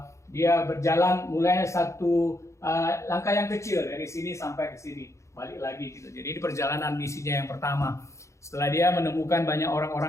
dia berjalan mulai satu langkah yang kecil dari sini sampai ke sini, balik lagi gitu. Jadi ini perjalanan misinya yang pertama. Setelah dia menemukan banyak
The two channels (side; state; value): right; late; 0.14 ms